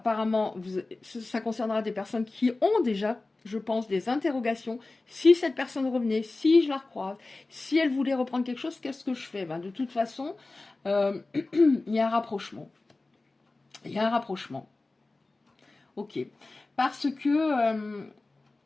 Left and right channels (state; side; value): quieter; right; 3.3 dB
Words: ça concernera des personnes qui ont déjà, je pense, des interrogations. Si cette personne revenait, si je la recroise, si elle voulait reprendre quelque chose, qu'est-ce que je fais? De toute façon, il y a un rapprochement. Il y a un rapprochement. Ok. Parce que